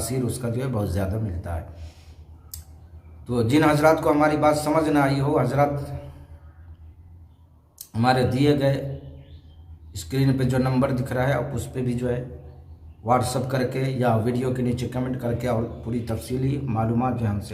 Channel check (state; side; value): identical; both; correlation 1.00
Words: उसका जो है बहुत ज़्यादा मिलता है। तो जिन हजरात को हमारी बात समझ ना आई हो, हजरात हमारे दिए गए स्क्रीन पे जो नंबर दिख रहा है आप उस पर भी जो है व्हाट्सअप करके या वीडियो के नीचे कमेंट करके और पूरी तफसीली मालूमात जो